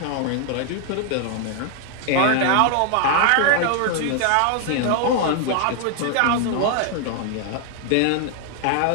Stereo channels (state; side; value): different; both; correlation 0.00